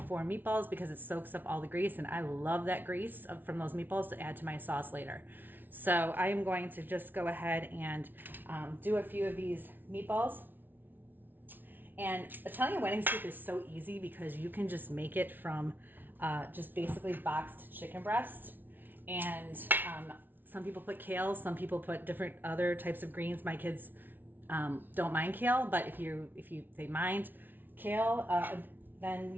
for meatballs because it soaks up all the grease, and I love that grease from those meatballs to add to my sauce later. So I am going to just go ahead and do a few of these meatballs. And Italian wedding soup is so easy because you can just make it from just basically boxed chicken breast. And some people put kale, some people put different other types of greens. My kids don't mind kale, but if they mind kale, then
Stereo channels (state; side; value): late; left; 0.092 ms